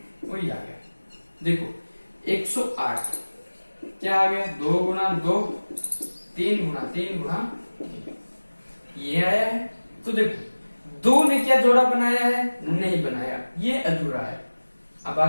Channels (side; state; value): both; inverted; correlation -1.00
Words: वही आ गया। देखो 108 क्या आ गया, 2 गुना 2, 3 गुना 3 गुना 3, ये आया है। तो देखो 2 ने क्या जोड़ा बनाया है, नहीं बनाया, ये अधूरा है। अब